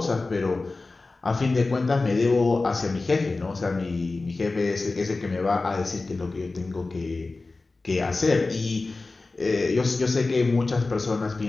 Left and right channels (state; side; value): quieter; right; 3.5 dB